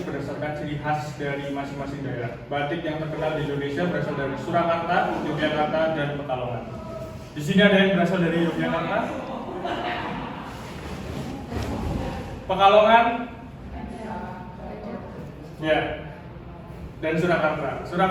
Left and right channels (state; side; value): identical; both; correlation 1.00